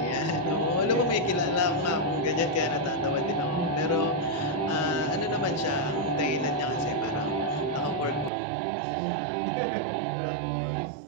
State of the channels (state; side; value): drops out; left; at 8.3 s